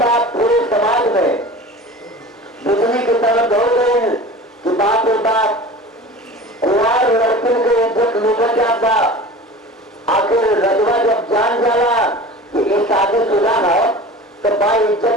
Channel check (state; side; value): normal; both; correlation 0.37